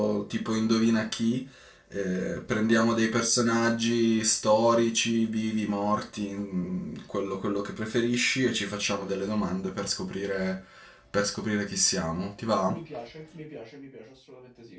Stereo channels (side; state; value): both; identical; correlation 1.00